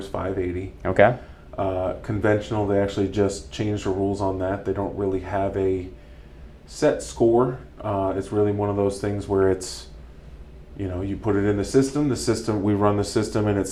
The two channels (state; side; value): identical; both; correlation 1.00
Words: 580. Okay. Conventional, they actually just changed the rules on that. They don't really have a set score. It's really one of those things where it's, you put it in the system, we run the system and it